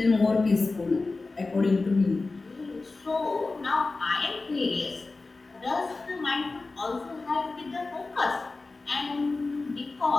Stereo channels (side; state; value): right; quieter; 3.6 dB